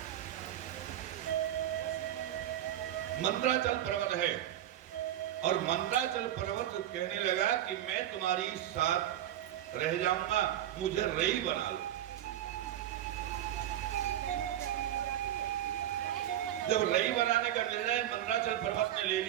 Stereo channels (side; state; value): left; quieter; 12.1 dB